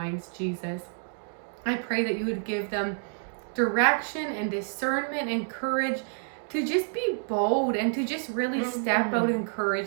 Jesus. I pray that you would give them direction and discernment and courage to just be bold and to just really step out in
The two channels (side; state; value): left; silent; digital silence